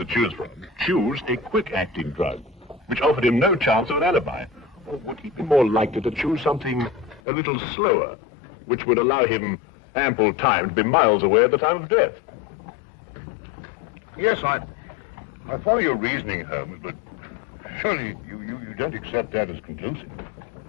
choose from choose a quick-acting drug, which offered him no chance of an alibi? Or would he be more likely to choose something a little slower, which would allow him ample time to be miles away at the time of death? Yes, I follow your reasoning, Holmes, but surely you don't accept that as conclusive.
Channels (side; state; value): right; drops out; at 7.2 s